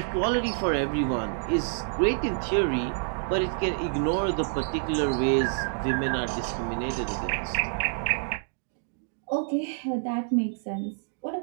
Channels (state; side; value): silent; left; digital silence